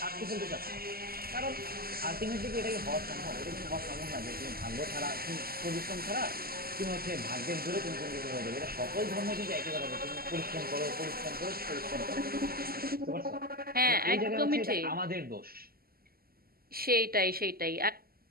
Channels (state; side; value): late; left; 0.44 ms